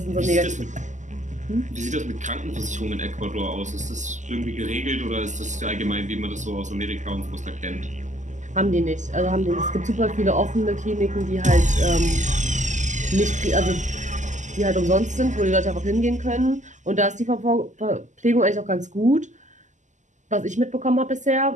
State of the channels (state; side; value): late; left; 0.35 ms